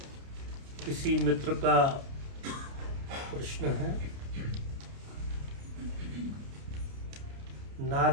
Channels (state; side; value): late; left; 29 ms